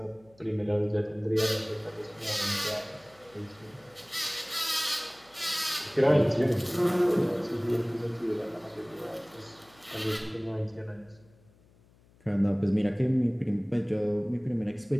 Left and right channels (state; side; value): noise; left; hum, 29 dB below the sound